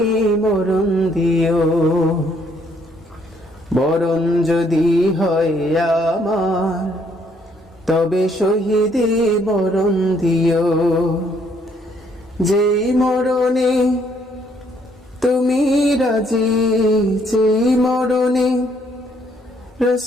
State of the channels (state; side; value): normal; both; correlation 0.68